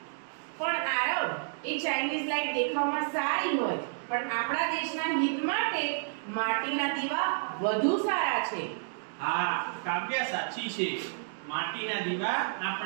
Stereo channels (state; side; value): silent; left; digital silence